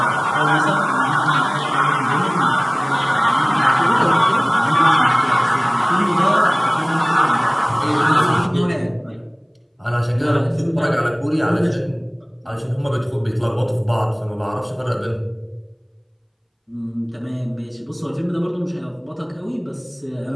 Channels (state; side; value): identical; both; correlation 1.00